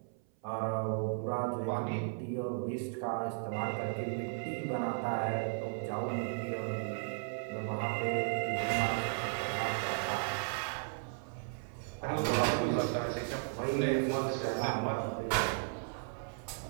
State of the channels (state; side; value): silent; left; 54 dB below the other